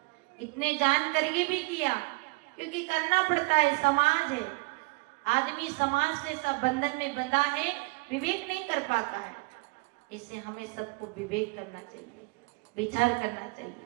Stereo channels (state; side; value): quieter; left; 27.7 dB